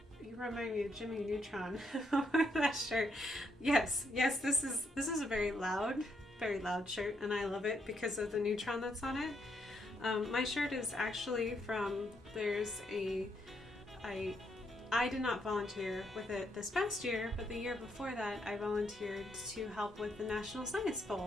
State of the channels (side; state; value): both; normal; correlation 0.76